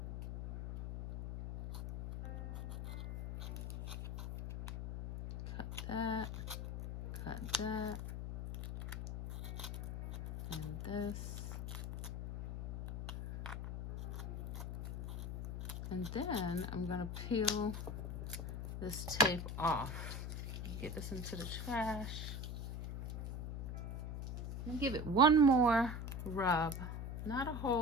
Cut that, and this. And then I'm gonna peel this tape off. Get this into the trash. And give it one more rub. Not a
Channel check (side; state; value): left; noise; hum, 6 dB below the sound